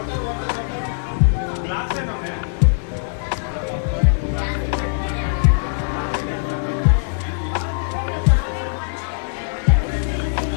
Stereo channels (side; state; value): right; silent; digital silence